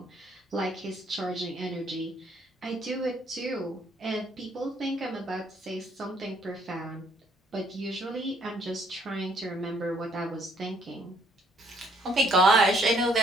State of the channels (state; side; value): normal; both; correlation 0.66